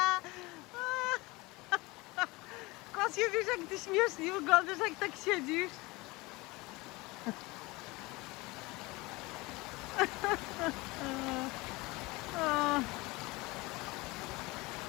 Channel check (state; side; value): quieter; right; 22.8 dB